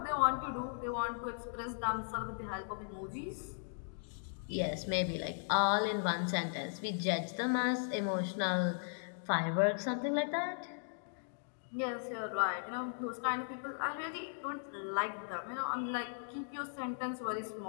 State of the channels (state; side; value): silent; right; digital silence